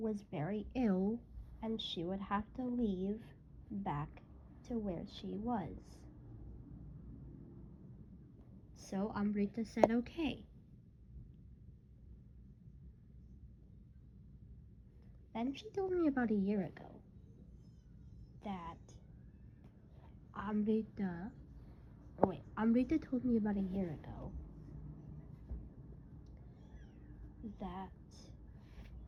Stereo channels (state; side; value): identical; both; correlation 1.00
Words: very ill, and she would have to leave back to where she was. So Amrita said okay. Then she told me about a year ago that Amrita told me about a year ago that